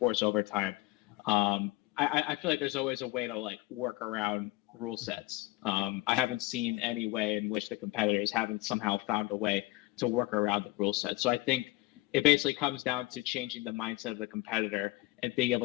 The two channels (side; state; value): right; quieter; 19.9 dB